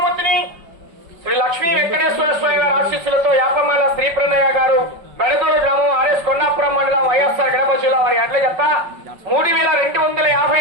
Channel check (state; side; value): late; left; 5.2 ms